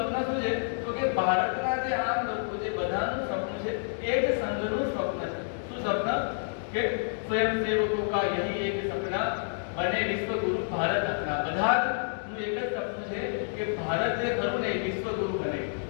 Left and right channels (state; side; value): silent; right; digital silence